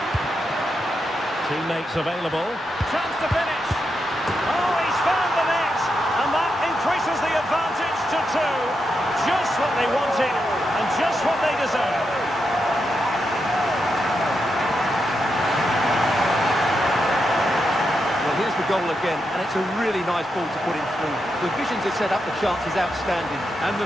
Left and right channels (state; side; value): normal; both; correlation 0.85